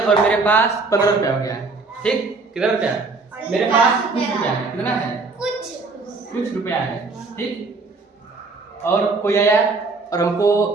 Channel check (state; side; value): quieter; left; 3.9 dB